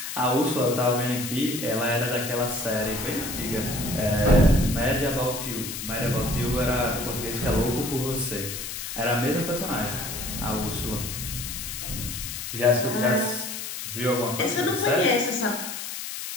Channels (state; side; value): noise; left; hiss, 6 dB below the sound